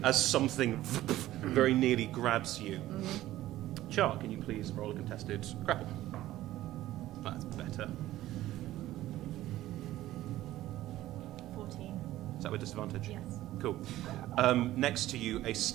as something very nearly grabs you. Char, can you please roll a contested grapple? That's better. 14. Is that with disadvantage? Yes. Cool. Next to you, a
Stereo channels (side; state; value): left; quieter; 15.0 dB